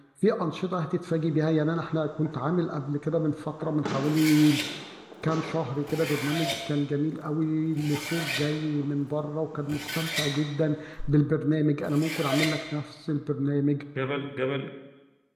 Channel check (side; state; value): both; identical; correlation 1.00